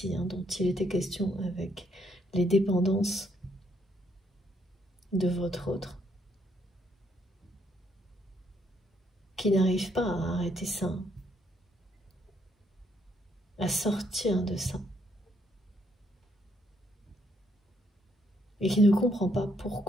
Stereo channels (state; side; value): normal; both; correlation 0.72